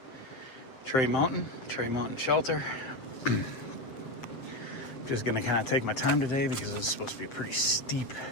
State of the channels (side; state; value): right; late; 7.7 ms